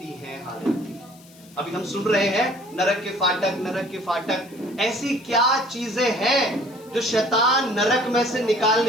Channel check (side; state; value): left; noise; hiss, 25 dB below the sound